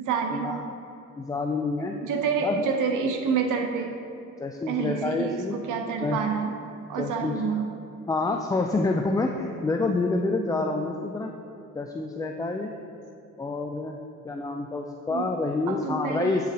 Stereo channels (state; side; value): normal; both; correlation 0.47